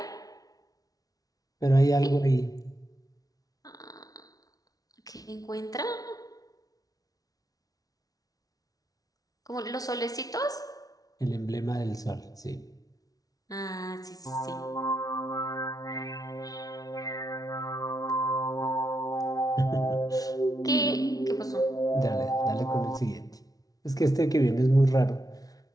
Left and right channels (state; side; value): late; right; 0.18 ms